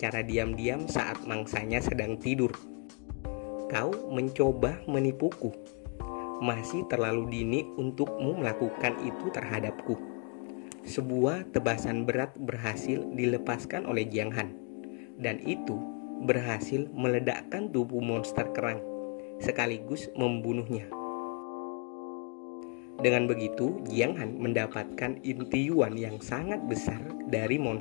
diam-diam saat mangsanya sedang tidur. Kau mencoba menipuku. Masih terlalu dini untukmu melakukan itu terhadapku. Sebuah tebasan berat berhasil dilepaskan oleh Jiang Han, dan itu berhasil meledakkan tubuh monster kerang, sekaligus membunuhnya. Dengan begitu, Jiang Han mendapatkan intiuan yang sangat besar dari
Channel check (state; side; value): quieter; right; 34.6 dB